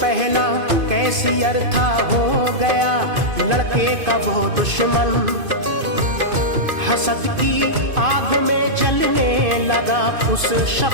कैसियर था हो गया लड़के का वो दुश्मन। हसद की आग में जलने लगा उस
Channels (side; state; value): left; late; 2.5 ms